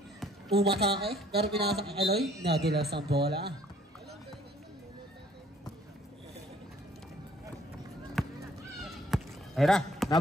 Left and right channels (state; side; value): normal; both; correlation 0.59